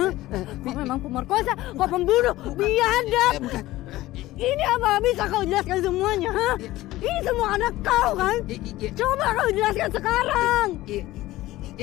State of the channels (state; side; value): quieter; right; 16.9 dB